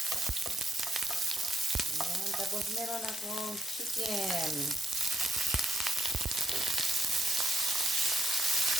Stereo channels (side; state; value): both; normal; correlation 0.78